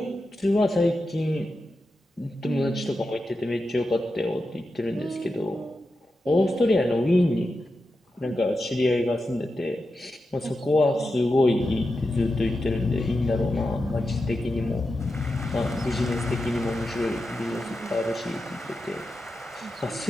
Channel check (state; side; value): normal; both; correlation 0.90